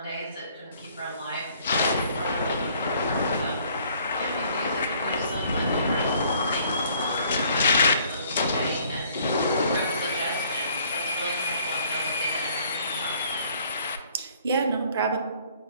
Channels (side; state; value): both; inverted; correlation -0.60